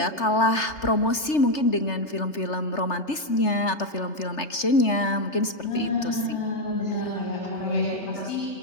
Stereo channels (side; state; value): right; late; 3.3 ms